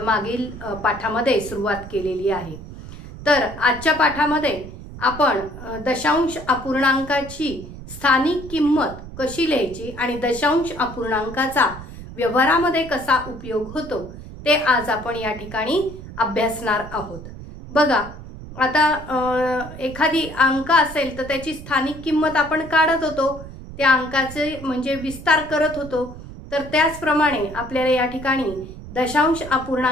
मागील पाठामध्ये सुरुवात केलेली आहे। तर आजच्या पाठामध्ये आपण दशांश अपूर्णांकाची स्थानिक किंमत कशी लिहायची आणि दशांश अपूर्णांकाचा व्यवहारामध्ये कसा उपयोग होतो ते आज आपण या ठिकाणी अभ्यासणार आहोत। बघा, आता एखादी अंक असेल तर त्याची स्थानिक किंमत आपण काढत होतो, त्या अंकाचे म्हणजे विस्तार करत होतो। तर त्याचप्रमाणे आपल्याला या ठिकाणी दशांश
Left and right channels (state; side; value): noise; right; rumble, 14 dB below the sound